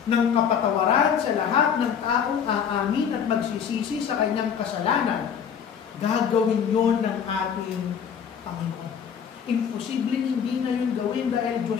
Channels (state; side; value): quieter; right; 7.6 dB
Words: ng kapatawaran sa lahat ng taong aamin at magsisisi sa kanyang kasalanan, gagawin yon ng ating Panginoon. Imposibleng hindi na yun gawin dahil Diyos